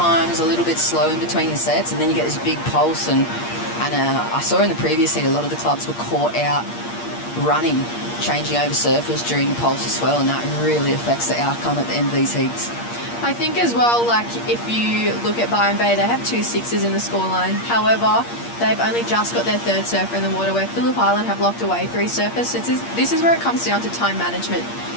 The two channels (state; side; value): late; right; 8.5 ms